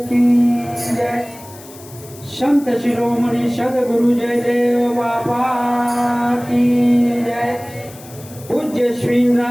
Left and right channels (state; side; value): noise; left; hiss, 20 dB below the sound